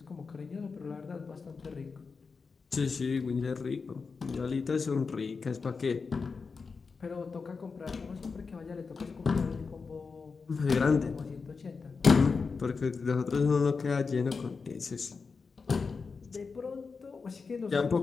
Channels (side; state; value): right; quieter; 4.9 dB